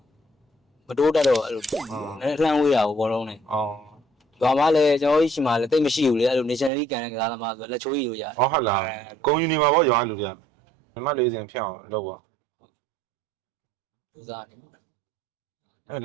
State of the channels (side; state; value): left; drops out; at 6.7 s